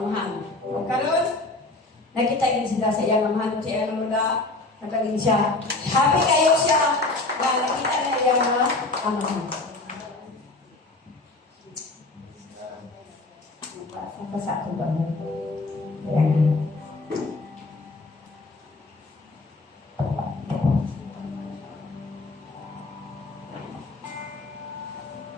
anghan. O karon nakita gid sila sa iyang anghan si ano na nagaling siya. Happy kayo siya na nakita na iyang anghan. Apa satu banget. Ayan.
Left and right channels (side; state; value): right; quieter; 3.2 dB